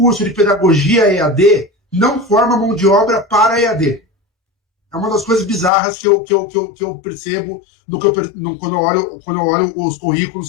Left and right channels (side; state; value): right; drops out; at 5.7 s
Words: de pedagogia EAD não forma mão de obra para EAD. É uma das coisas bizarras que eu percebo quando eu olho os